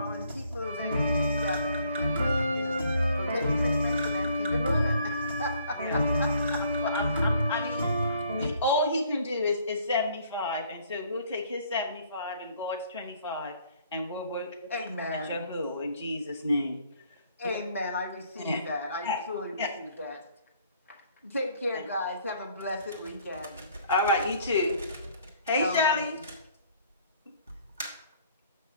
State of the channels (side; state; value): both; inverted; correlation -0.61